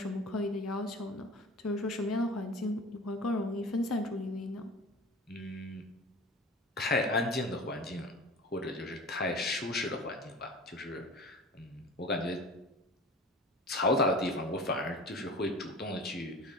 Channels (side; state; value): both; normal; correlation 0.38